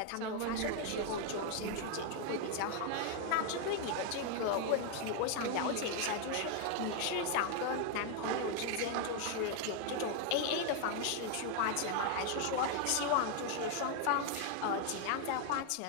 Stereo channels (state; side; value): different; both; correlation 0.01